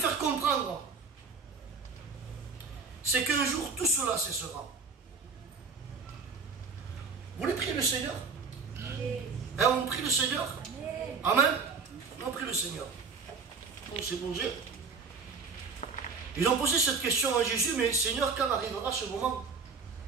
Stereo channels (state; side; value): quieter; left; 4.9 dB